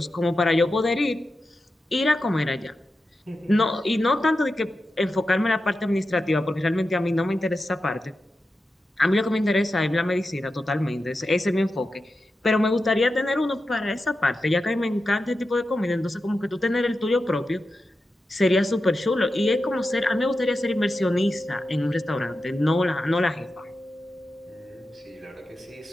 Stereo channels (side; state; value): both; normal; correlation 0.91